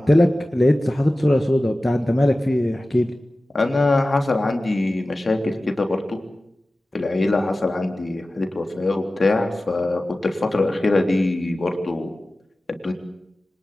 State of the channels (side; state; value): both; normal; correlation 0.96